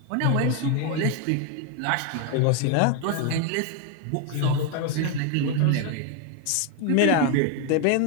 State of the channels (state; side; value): different; both; correlation 0.01